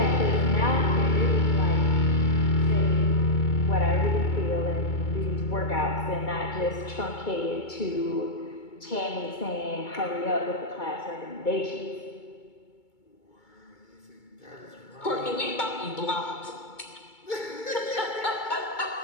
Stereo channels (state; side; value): late; right; 2.2 ms